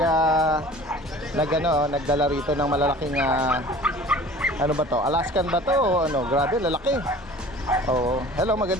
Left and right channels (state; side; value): normal; both; correlation 0.45